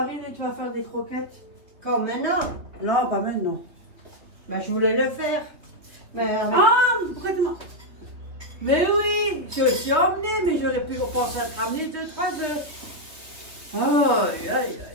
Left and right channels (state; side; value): late; left; 3.0 ms